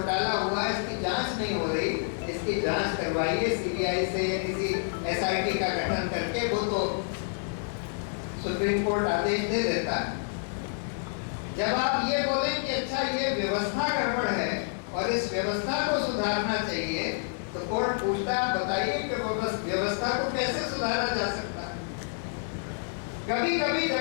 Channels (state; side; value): silent; right; 59 dB below the other